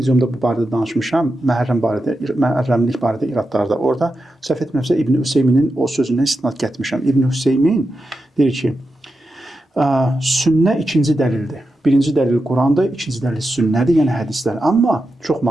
bu barədə danışmışam, məhərrəmlik barədə iradlarda. Orada səhv etmirəmsə İbn Hüseyminin o sözündən istinad gətirmişəm. İbn Hüseymin deyir ki, sünnə ikinci dəlildir. Birinci dəlil Qurandır, ikinci dəlil sünnədir, yəni hədislər. Amma çox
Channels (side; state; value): both; normal; correlation 0.89